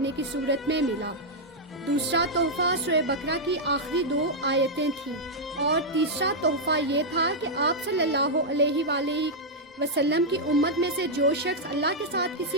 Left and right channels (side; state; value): both; normal; correlation -0.04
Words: کی صورت میں ملا۔ دوسرا تحفہ سورہ بقرہ کی آخری 2 آیتیں تھیں، اور تیسرا تحفہ یہ تھا کہ آپ صلی اللہ علیہ وآلہ وسلم کی امت میں سے جو شخص اللہ کے ساتھ